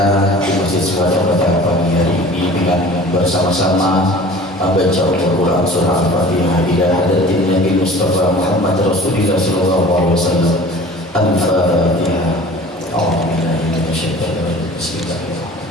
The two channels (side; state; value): both; normal; correlation 0.43